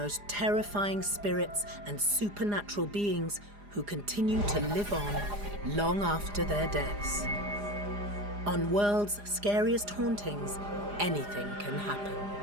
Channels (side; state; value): left; late; 4.9 ms